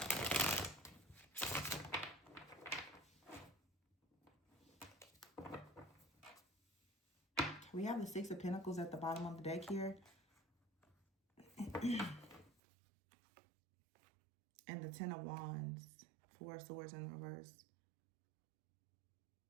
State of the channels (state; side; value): drops out; left; at 12.5 s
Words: We have the Six of Pentacles at the bottom of the deck here. And the Ten of Wands. Four of Swords in reverse.